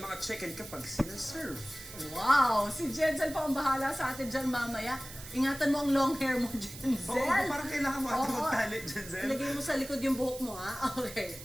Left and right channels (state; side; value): noise; right; hiss, 14 dB below the sound